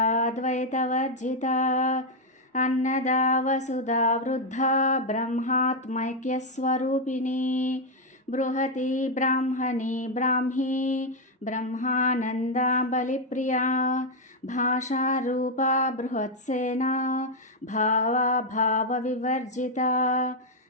अन्नदा वसुधा वृद्धा ब्रह्मात्मैक्यस्वरूपिणी बृहती ब्राह्मणी ब्राह्मी ब्रह्मानन्दा बलिप्रिया भाषारूपा बृहत्सेना भावा भावविवर्जिता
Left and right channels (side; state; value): both; normal; correlation 0.01